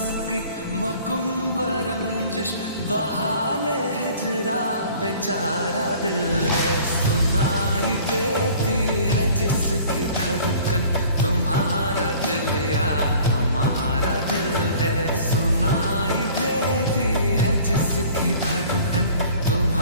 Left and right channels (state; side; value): inverted; both; correlation -0.50